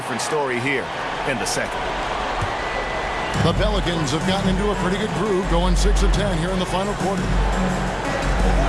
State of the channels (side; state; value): both; identical; correlation 1.00